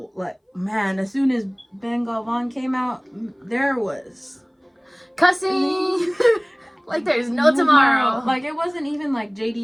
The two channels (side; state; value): both; identical; correlation 1.00